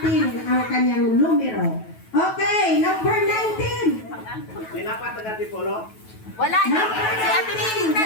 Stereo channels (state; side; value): late; right; 9.2 ms